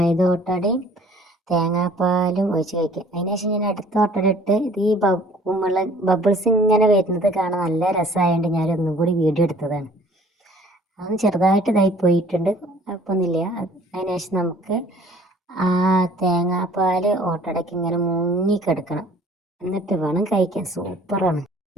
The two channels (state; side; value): normal; both; correlation 0.54